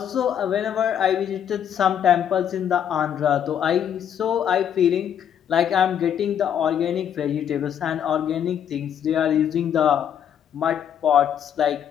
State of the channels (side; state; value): right; quieter; 9.2 dB